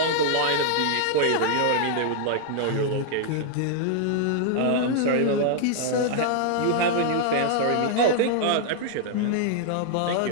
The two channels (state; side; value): different; both; correlation 0.00